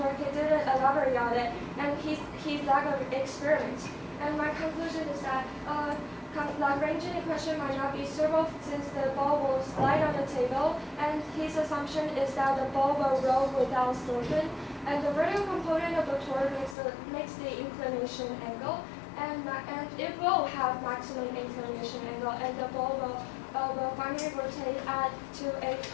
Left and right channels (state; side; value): drops out; right; at 16.8 s